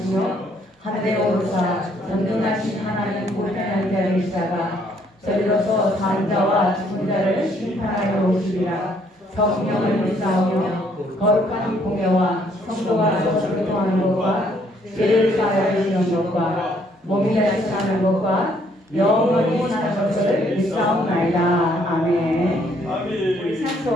하늘에 오르사 전능하신 하나님 우편한 자를 있다가 저리로서 산 자와 죽은 자를 심판하여 오시리라. 성령을 믿사오며 거룩한 공예와 성도가 서로 교통하는 것과 죄를 사하여 주시는 것과 몸이 다시 사는 것과 영원히 사는 것을 믿사옵나이다. 아멘. 우리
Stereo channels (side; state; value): both; normal; correlation 0.67